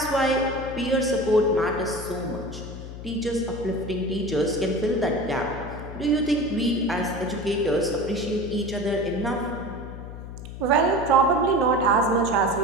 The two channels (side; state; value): left; noise; hum, 11 dB below the sound